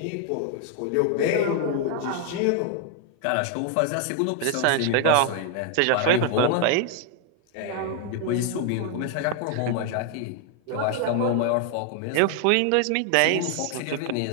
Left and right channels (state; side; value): different; both; correlation 0.00